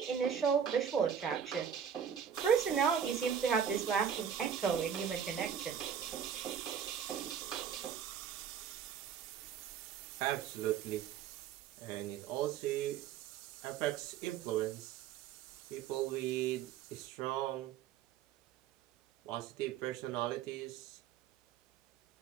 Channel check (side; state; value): left; quieter; 8.1 dB